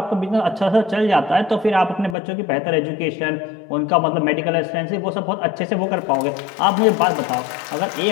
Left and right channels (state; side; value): drops out; right; at 2.1 s